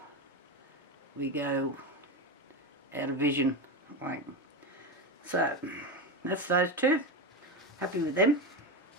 we go out of vision. Like, so that's those two. Happy with them.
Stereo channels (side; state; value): both; normal; correlation 0.17